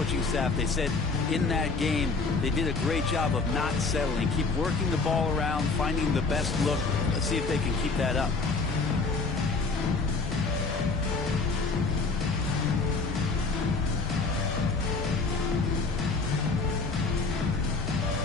staff, they said in that game they did a great job of not settling. Keep working the ball around, finding the best look. Let's see if they can keep that up.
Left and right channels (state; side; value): quieter; right; 4.1 dB